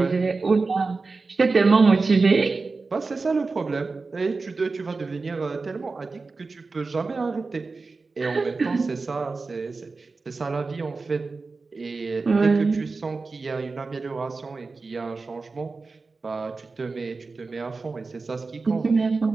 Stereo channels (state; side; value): quieter; left; 4.0 dB